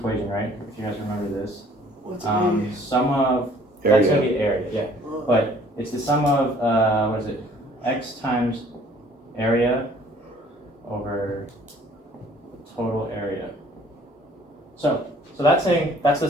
right? If you guys remember this. What's sum of, area? That's going to be area, yeah. But it's the sum of, what is it? X times area over total area. So that's saying that's the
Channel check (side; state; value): both; normal; correlation 0.56